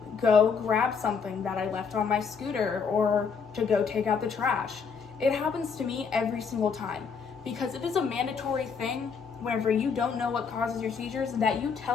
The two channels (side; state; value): right; quieter; 5.8 dB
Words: go grab something that I left on my scooter or to go take out the trash. It happens to me every single time because it is a mandatory thing whenever you don't know what causes your seizures that you